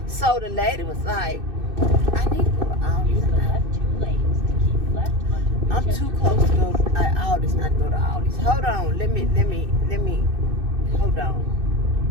So, the lady was like, I need to go to Aldi's. Use the left 2 lanes to keep left onto I'm Winchester too close to go to Aldi's, not to go to Aldi's. Hold on, let me, hold on.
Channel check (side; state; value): left; late; 2.6 ms